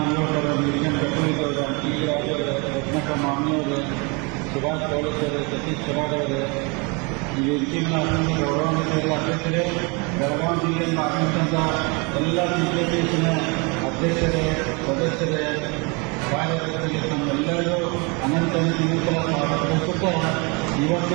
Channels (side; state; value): left; quieter; 30.3 dB